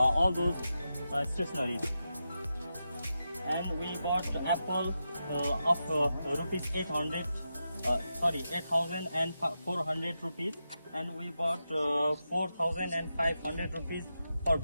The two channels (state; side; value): inverted; both; correlation -0.89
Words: those stationeries. And we bought apple of rupees 8,400 rupees, and we bought 4,500 rupees for